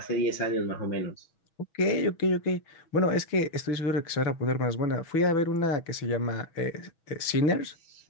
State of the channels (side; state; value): right; late; 6.2 ms